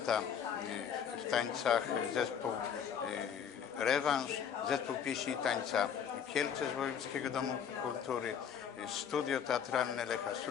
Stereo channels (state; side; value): quieter; right; 7.9 dB